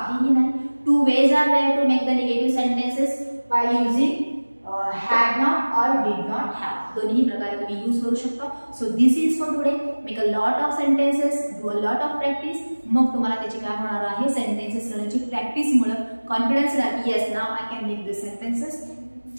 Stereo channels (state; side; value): inverted; both; correlation -1.00